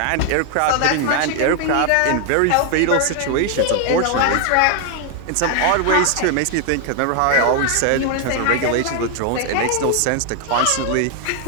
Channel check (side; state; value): both; different; correlation 0.00